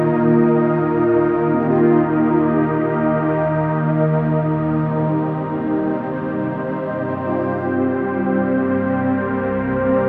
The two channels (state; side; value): identical; both; correlation 1.00